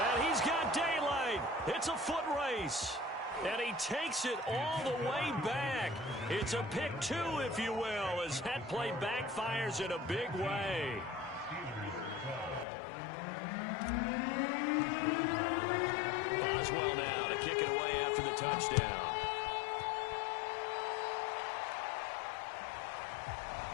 he's got daylight. It's a foot race. And he takes it all the way back. It's a pick 2, if you will, as that play backfires in a big way. Boswell now to kick it away after the touchdown.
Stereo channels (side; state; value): right; drops out; at 12.7 s